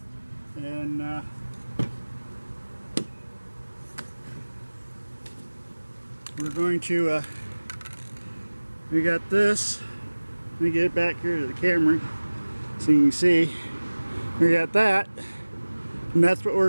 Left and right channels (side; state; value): both; inverted; correlation -1.00